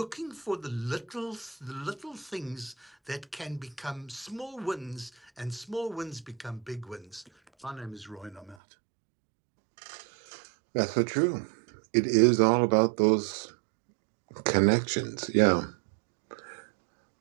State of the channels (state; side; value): drops out; left; at 8.6 s